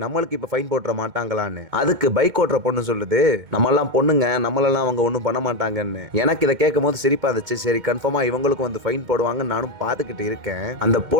நம்மளுக்கு இப்ப ஃபைன் போட்டுற மாட்டாங்களான்னு. அதுக்கு பைக் ஓட்டுற பொண்ணு சொல்லுது, நம்மெல்லாம் பொண்ணுங்க, நம்மளெல்லாம் அவங்க ஒண்ணும் பண்ண மாட்டாங்கன்னு. எனக்கு இதை கேட்கும் போது சிரிப்பா இருந்துச்சு. சரி, கன்ஃபார்மா இவங்களுக்கும் வந்து ஃபைன் போடுவாங்க நானும் பாத்துக்கிட்டு இருக்கேன். அந்த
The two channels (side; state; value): left; late; 2.2 ms